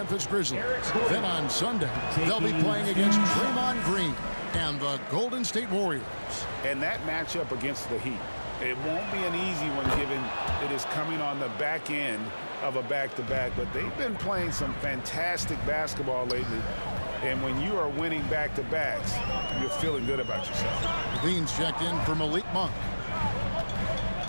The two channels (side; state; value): both; inverted; correlation -1.00